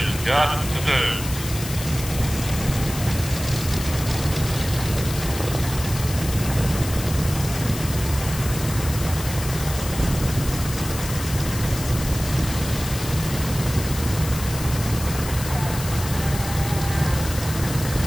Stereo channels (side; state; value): left; noise; hiss, 9 dB below the sound